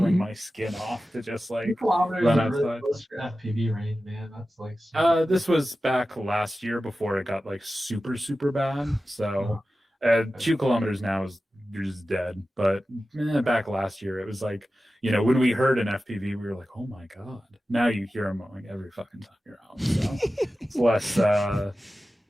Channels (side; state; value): both; normal; correlation 0.94